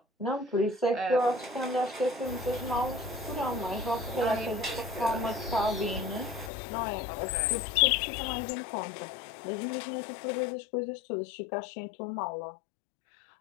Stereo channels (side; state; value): right; drops out; at 6.5 s